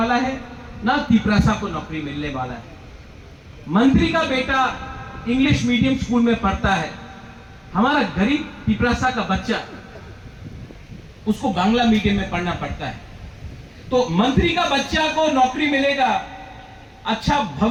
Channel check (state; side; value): identical; both; correlation 1.00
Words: है, ना तिपरासा को नौकरी मिलने वाला है। मंत्री का बेटा इंग्लिश मीडियम स्कूल में पढ़ता है, हमारा गरीब तिपरासा का बच्चा उसको बांग्ला मीडियम में पढ़ना पड़ता है। तो मंत्री का बच्चा को नौकरी मिलेगा, अच्छा